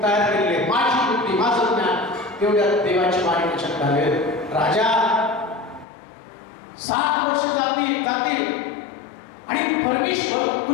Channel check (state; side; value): drops out; right; at 5.9 s